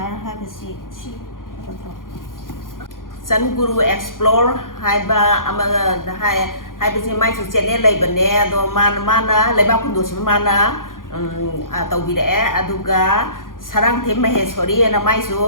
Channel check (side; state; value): right; late; 0.90 ms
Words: hai bà chị Sun Guru Explore hai ba ama hai bà chị mai chủ channel lấy bên nè do mana lấy bao kundu sih mana tàu bị đẻ aduga sarang thêm mày sorry na mai